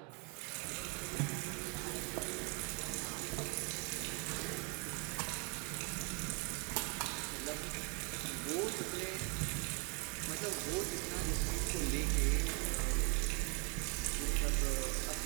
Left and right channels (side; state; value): left; quieter; 34.6 dB